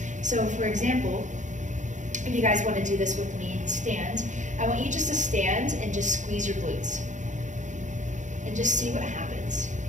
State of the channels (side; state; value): left; late; 0.36 ms